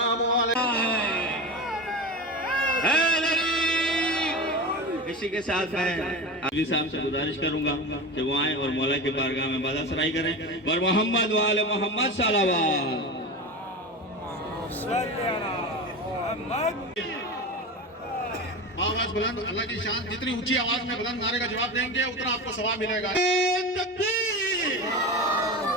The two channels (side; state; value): both; normal; correlation 0.26